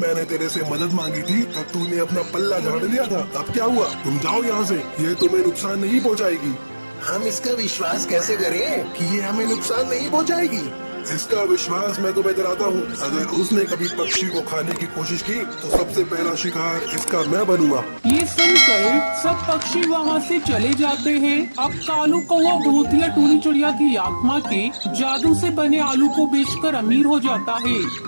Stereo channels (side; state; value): both; inverted; correlation -1.00